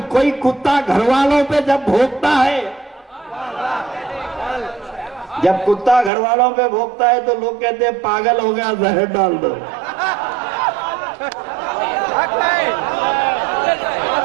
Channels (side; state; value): left; drops out; at 6.1 s